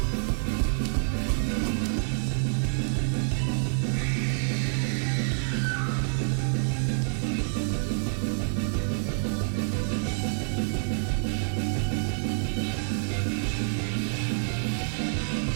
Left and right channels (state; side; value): silent; left; 58 dB below the other